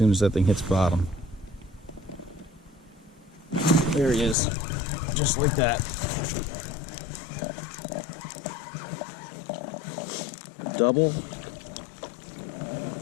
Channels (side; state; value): right; drops out; at 4.4 s